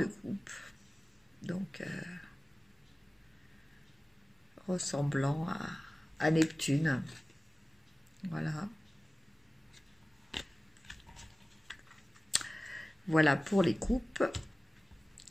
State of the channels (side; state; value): both; normal; correlation 0.97